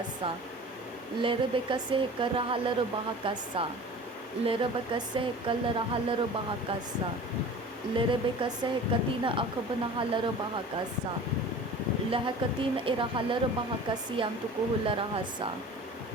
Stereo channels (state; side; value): normal; both; correlation 0.40